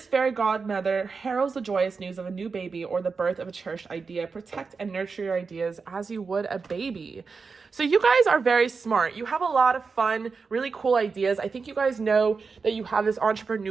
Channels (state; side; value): quieter; left; 4.9 dB